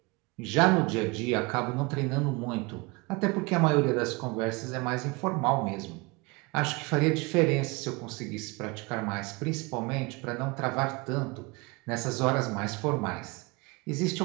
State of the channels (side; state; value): left; quieter; 26.6 dB